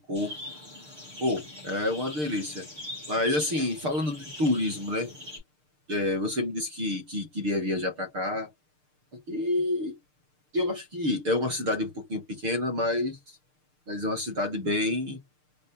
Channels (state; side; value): late; left; 6.6 ms